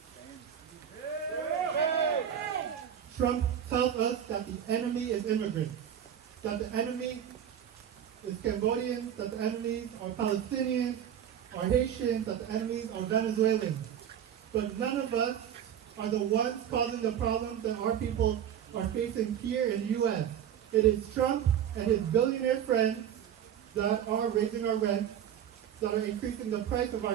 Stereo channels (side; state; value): left; quieter; 9.5 dB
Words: Trump tells us that the enemy is immigrants, that the enemy is Cambodians, that the enemies are Palestinians, are Haitians, that the enemies are Venezuelans. But none of us are the ones causing the problems that our people are facing here in the U.S. It is Trump and his billionaire friends that are raising our rent, that are increasing the price of